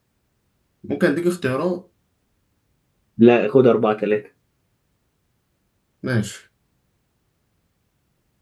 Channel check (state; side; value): identical; both; correlation 1.00